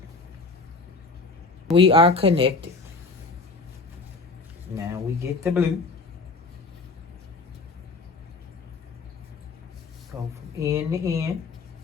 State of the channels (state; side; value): quieter; right; 3.9 dB